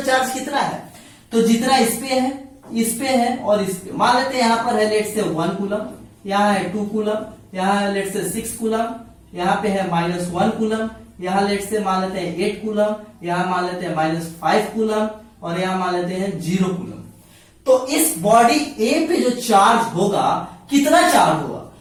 चार्ज कितना है, तो जितना इस पे है और इस पे, मान लेते हैं यहां पर है लेट से 1 कूलम, यहां है 2 कूलम, यहां है लेट से 6 कूलम, यहां पे है -1 कूलम, यहां लेट से मान लेते हैं 8 कूलम, यहां मान लेते हैं -5 कूलम और यहां मान लेते हैं 0 कूलम। तो इस बॉडी ए पे जो चार्ज होगा, कितना चार्ज होगा,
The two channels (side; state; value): both; identical; correlation 1.00